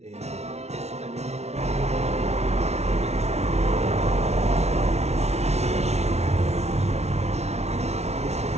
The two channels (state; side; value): late; left; 0.31 ms